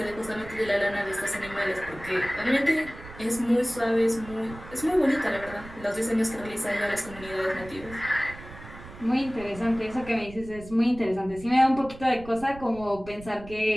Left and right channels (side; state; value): right; noise; rumble, 16 dB below the sound